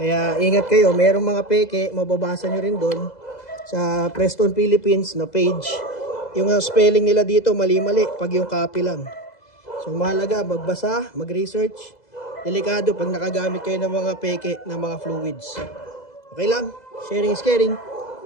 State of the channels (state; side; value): late; right; 2.0 ms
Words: ingat kayo, merong mga peke, mababasa nyo rin doon sa Preston Philippines na page. Yung spelling nila dito mali-mali pag yung copy lang. So mahalaga, magbasa, mag-research. Delikado pag nakagamit kayo ng mga peke, ng mga fluids. Okay lang? Sharing is caring.